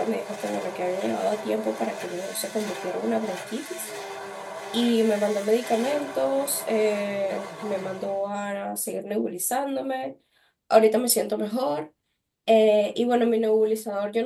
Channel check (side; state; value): both; identical; correlation 1.00